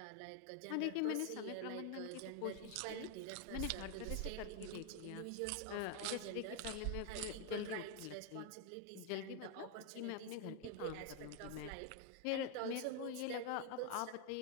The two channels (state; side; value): different; both; correlation 0.01